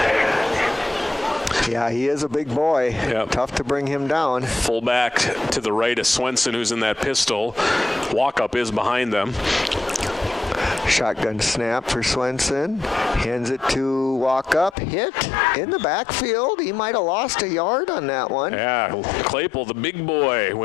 Yeah, he is a big boy. Yep. Tough to bring him down. Fullback to the right of Swenson, who's in that pistol. Walkup is behind them. Shotgun snap for Swenson. Hands it to Walkup. Hit in the backfield. He might have lost a yard on that one. Yeah, Claypool, the big boy,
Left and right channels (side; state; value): right; drops out; at 14.8 s